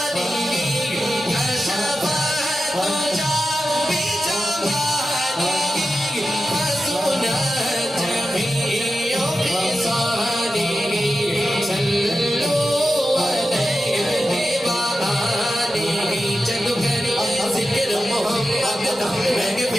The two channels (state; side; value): normal; both; correlation 0.92